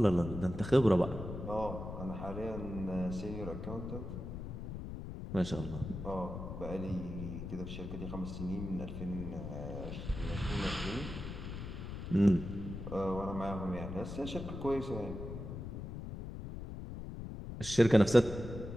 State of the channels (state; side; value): noise; left; rumble, 7 dB below the sound